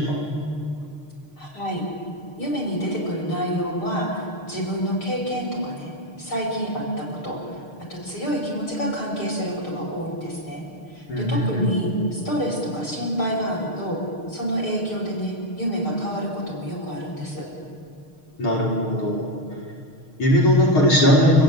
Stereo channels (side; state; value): right; late; 6.5 ms